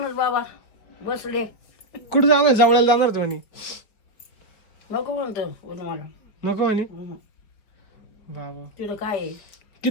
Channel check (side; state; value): right; late; 4.8 ms